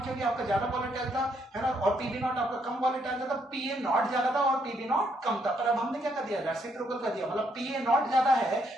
क्योंकि आपका ज्यादा वोलेटाइल था, है ना, और पी बी नॉट आपका कम वोलेटाइल था, तो पी ए नॉट ज्यादा था और पी बी नॉट कम था। पर अब हमने क्या कर दिया, रेसिप्रोकल कर दिया, मतलब पी ए नॉट ज्यादा है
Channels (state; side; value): normal; both; correlation 0.73